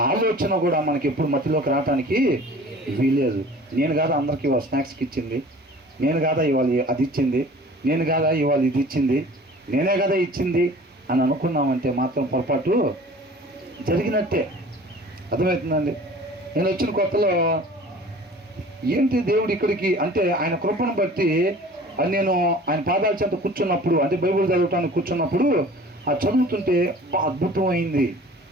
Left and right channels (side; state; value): both; normal; correlation 0.45